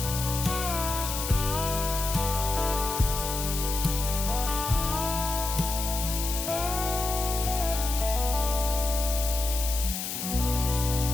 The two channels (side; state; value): left; noise; hiss, 4 dB below the sound